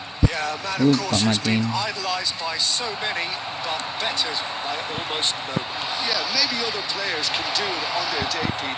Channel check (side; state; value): both; identical; correlation 1.00